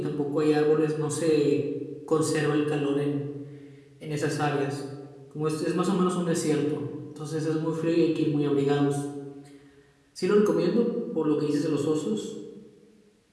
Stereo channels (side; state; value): both; identical; correlation 1.00